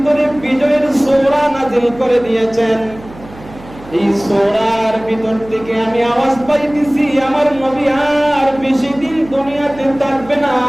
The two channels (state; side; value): noise; right; hum, 19 dB below the sound